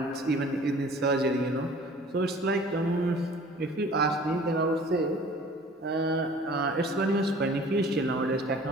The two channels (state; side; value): normal; both; correlation 0.48